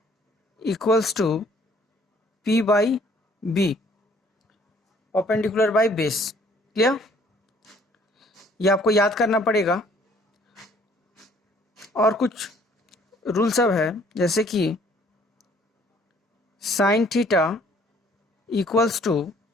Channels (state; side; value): normal; both; correlation 0.59